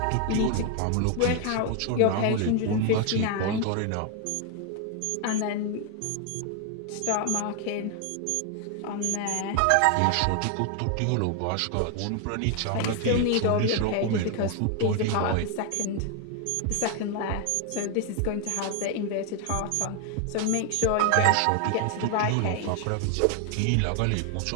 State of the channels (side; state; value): both; different; correlation 0.01